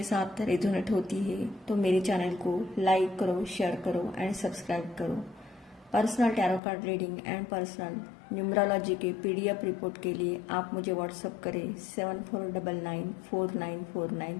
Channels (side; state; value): right; drops out; at 6.6 s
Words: साथ रेजोनेट होती है तो मेरे चैनल को लाइक करो, शेयर करो एंड सब्सक्राइब करो। Personal tarot card reading and personal numerology के PDF रिपोर्ट के लिए आप मुझे व्हाट्सएप करें